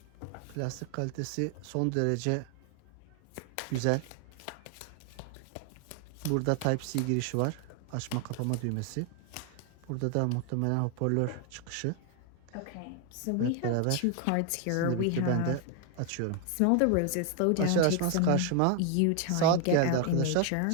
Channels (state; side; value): different; both; correlation 0.00